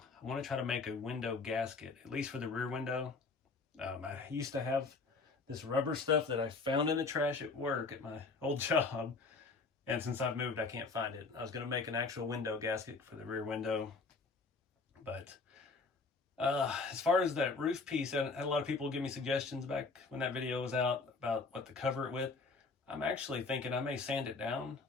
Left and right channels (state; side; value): quieter; right; 4.1 dB